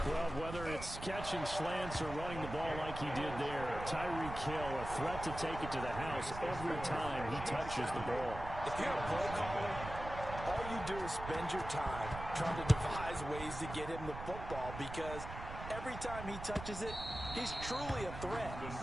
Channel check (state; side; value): noise; right; rumble, 9 dB below the sound